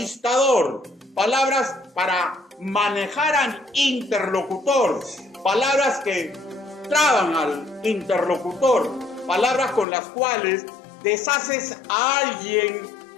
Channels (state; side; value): drops out; right; at 9.9 s